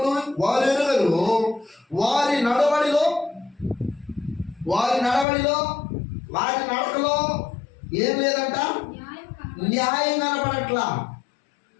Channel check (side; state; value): right; drops out; at 5.2 s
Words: వారు ఎరుగరు, వారి నడవడిలో, వారి నడకలో ఏం లేదంట? న్యాయం కనపడట్లా.